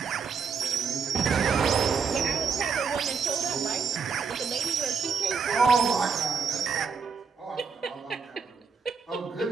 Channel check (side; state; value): left; quieter; 5.7 dB